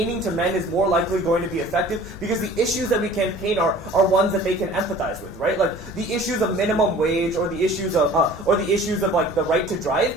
to men is more likely going to be effective because the issues that we campaign are ones that they can empathize with, right? The issues of minimum wage or the issues of the right to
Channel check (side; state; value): both; normal; correlation 0.46